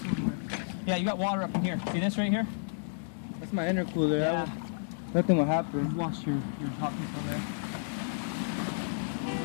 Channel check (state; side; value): silent; right; digital silence